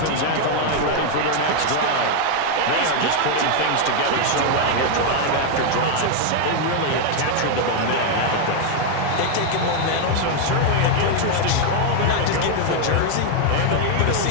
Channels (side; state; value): both; different; correlation 0.01